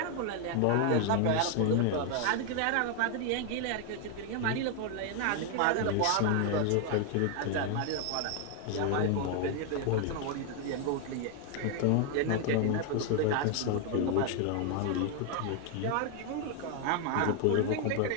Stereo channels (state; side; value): different; both; correlation 0.00